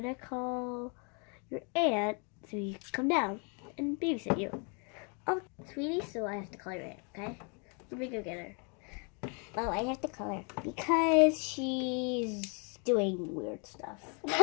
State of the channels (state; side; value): quieter; right; 36.2 dB